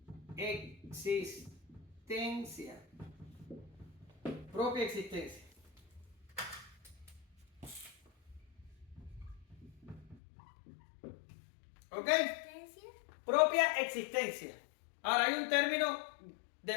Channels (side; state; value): right; drops out; at 10.2 s